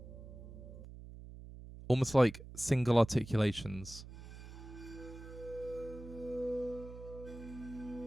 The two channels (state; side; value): noise; right; hum, 14 dB below the sound